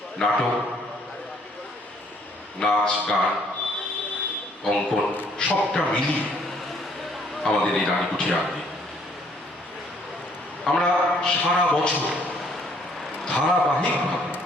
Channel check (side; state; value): both; normal; correlation 0.63